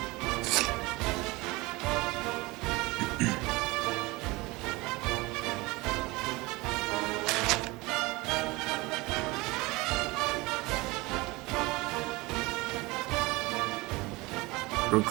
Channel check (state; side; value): quieter; left; 22.9 dB